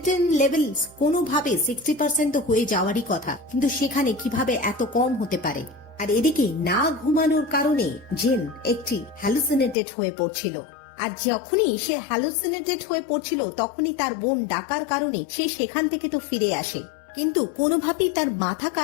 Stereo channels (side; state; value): right; drops out; at 9.8 s